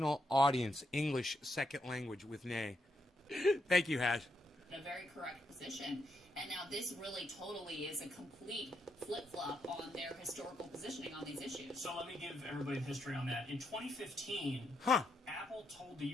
audience, English second language with Nay. Thank you, Hash. a very correct position. And now this really totally is a complete flip-flop on their historical positioning on these issues. So let me give everybody the history on that. In 2015, Apple told the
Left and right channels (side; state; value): both; normal; correlation 0.80